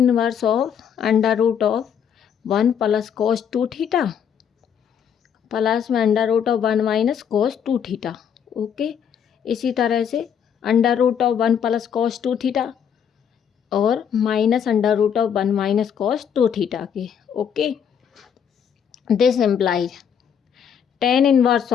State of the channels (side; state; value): right; quieter; 8.0 dB